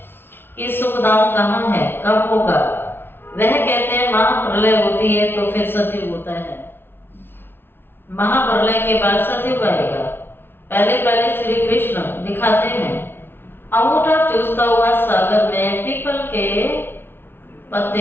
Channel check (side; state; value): right; late; 0.11 ms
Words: कि सुख धाम कहाँ है, कब होगा? वह कहते हैं महाप्रलय होती है तो फिर सतयुग होता है। महाप्रलय के बाद सतयुग आएगा। पहले श्री कृष्ण दिखाते हैं अंगूठा चूसता हुआ सागर में पीपल के